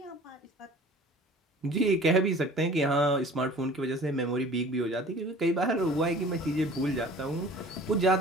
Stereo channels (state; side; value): normal; both; correlation 0.46